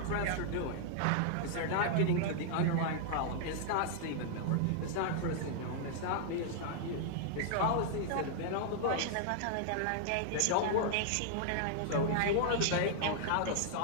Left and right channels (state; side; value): different; both; correlation -0.01